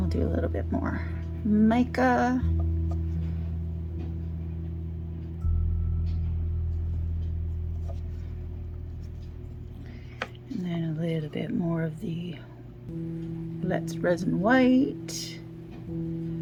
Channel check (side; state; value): both; identical; correlation 1.00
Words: do a little bit more mica. And then a little bit more of the Resin white.